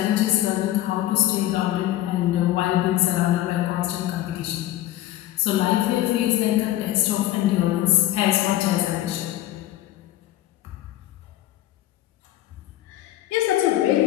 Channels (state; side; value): quieter; right; 14.4 dB